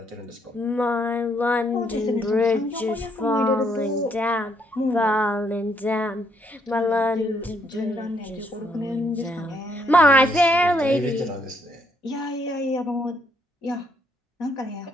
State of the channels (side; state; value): both; normal; correlation 0.72